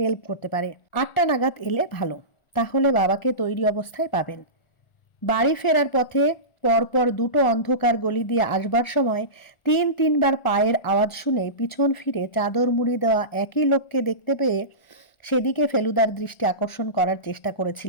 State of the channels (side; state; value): right; late; 1.4 ms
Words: করতে পারে। 8টা নাগাদ এলে ভালো, তাহলে বাবাকে তৈরি অবস্থায় পাবেন। বাড়ি ফেরার পথে পরপর 2টো অন্ধকার গলি দিয়ে আসবার সময় 3-3 বার পায়ের আওয়াজ শুনে পিছন ফিরে চাদর মুড়ি দেওয়া একই লোককে দেখতে পেয়ে সেদিকে ফেলুদার দৃষ্টি আকর্ষণ করার চেষ্টা